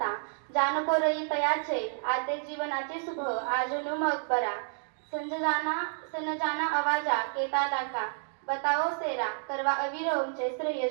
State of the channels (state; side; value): silent; left; digital silence